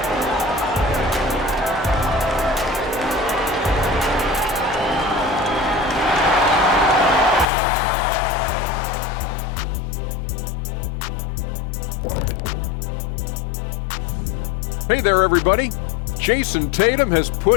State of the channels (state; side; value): drops out; right; at 7.5 s